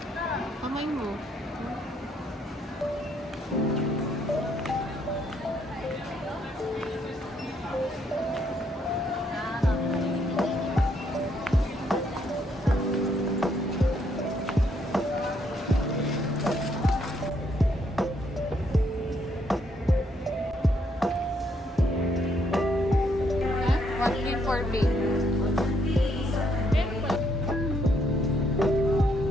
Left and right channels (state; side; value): normal; both; correlation 0.72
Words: Kamay mo. What mean for me?